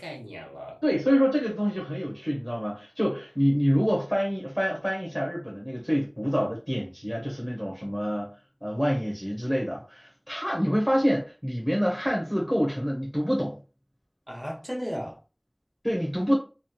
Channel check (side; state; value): both; identical; correlation 1.00